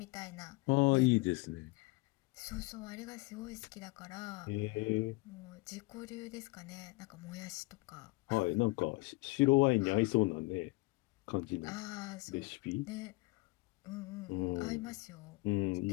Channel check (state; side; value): quieter; right; 24.2 dB